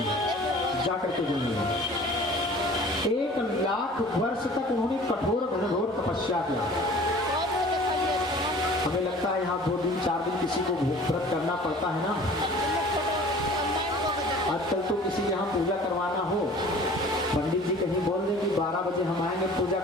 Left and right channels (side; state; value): both; normal; correlation 0.46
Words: जाकर के जल में 1,00,000 वर्ष तक उन्होंने कठोर घनघोर तपस्या किया। हमें लगता है यहाँ 2 दिन 4 दिन किसी को व्रत करना पड़ता है ना। आजकल तो किसी यहाँ पूजा करवाना हो, पंडित जी कहीं बोल दें कि 12 बजे हम आएंगे पूजा